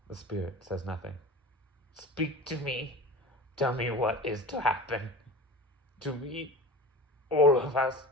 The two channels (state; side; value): normal; both; correlation 0.34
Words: The spirit says nothing. "Speak to me. Tell me what is to happen. To me, all of us."